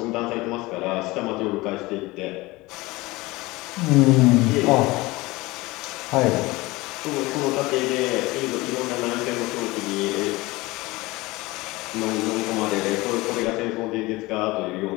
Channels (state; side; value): quieter; right; 21.3 dB